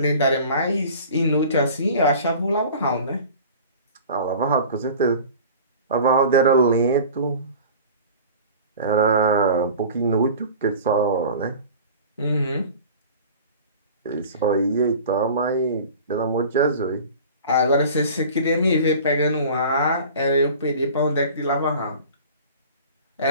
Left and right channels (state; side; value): inverted; both; correlation -0.41